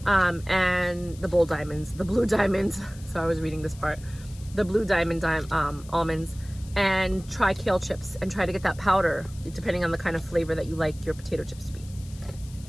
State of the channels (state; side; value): noise; left; hiss, 22 dB below the sound